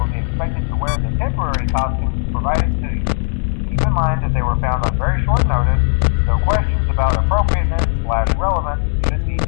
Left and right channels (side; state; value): right; silent; digital silence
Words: be expected to wear the temporary costumes provided to you. Keep in mind that they were found on very short notice, so questions about appropriateness/relevance should be